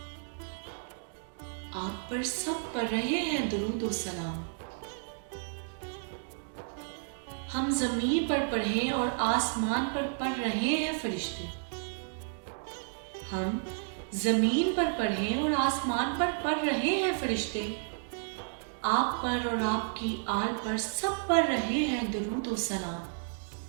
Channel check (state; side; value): silent; left; digital silence